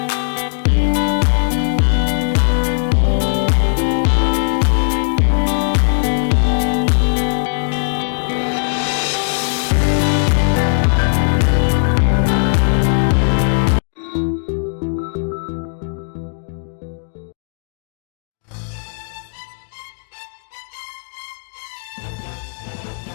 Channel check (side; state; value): right; silent; digital silence